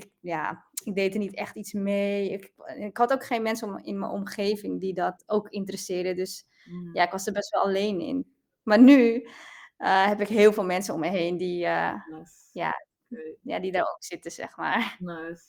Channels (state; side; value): identical; both; correlation 1.00